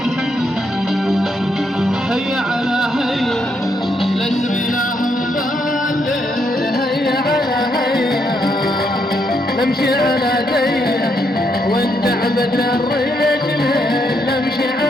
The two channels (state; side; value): normal; both; correlation 0.76